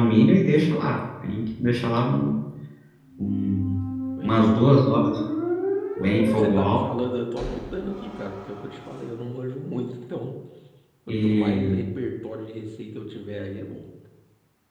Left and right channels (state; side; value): identical; both; correlation 1.00